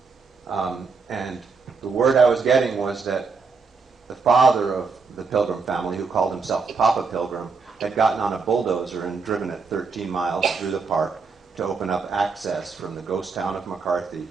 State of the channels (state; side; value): quieter; left; 4.8 dB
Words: And the word I was getting was that the father of the Pilgrim family, who called himself Papa Pilgrim, had gotten on a bulldozer and driven it 13 miles through the park to open up access from the ghost town of McCarthy